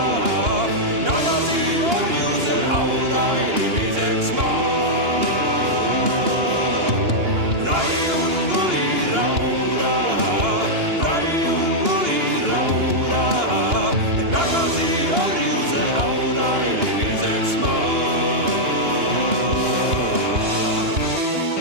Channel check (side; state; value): left; late; 2.9 ms